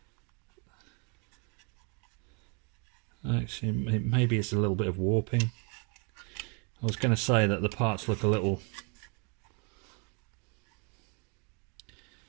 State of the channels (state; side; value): quieter; left; 34.5 dB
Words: actually, maybe it's a little bit of warping. I was going to say that the parts look a little